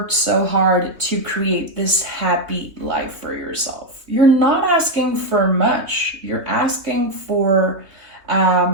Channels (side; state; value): left; late; 3.2 ms